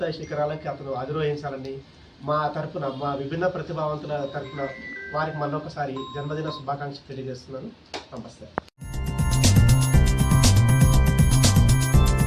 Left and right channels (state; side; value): identical; both; correlation 1.00